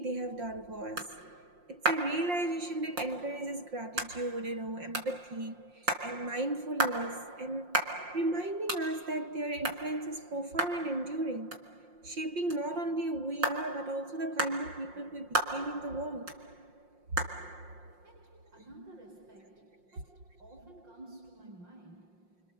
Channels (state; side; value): late; left; 5.6 ms